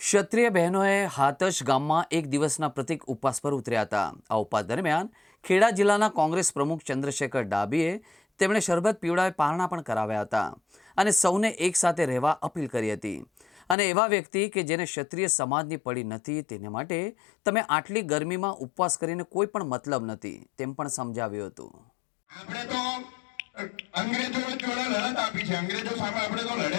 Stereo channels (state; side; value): drops out; right; at 13.8 s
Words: બહેનોએ હાથજ ગામમાં એક દિવસના પ્રતિક ઉપવાસ પર ઉતર્યા હતા। આ ઉપવાસ દરમિયાન ખેડા જિલ્લાના કોંગ્રેસ પ્રમુખ ચંદ્રશેખર ડાબીએ તેમણે શરબત પીવડાવી પારણા પણ કરાવ્યા હતા અને સૌને એક સાથે રહેવા અપીલ કરી હતી અને એવા વ્યક્તિ કે જેને ક્ષત્રિય સમાજની પડી નથી તેને માટે તમે આટલી ગરમીમાં ઉપવાસ કરીને કોઈ પણ મતલબ નથી તેમ પણ સમજાવ્યું હતું। આપણે તો અંગ્રેજો જોડે લડત આપી છે, અંગ્રેજો સામે આપણે તો